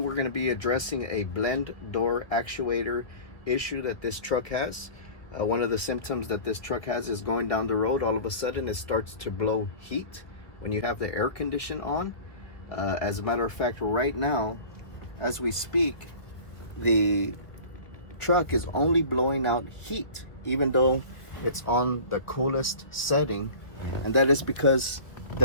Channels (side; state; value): right; late; 1.7 ms